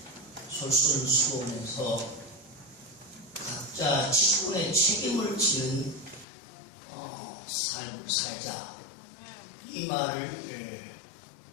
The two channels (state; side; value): drops out; right; at 6.2 s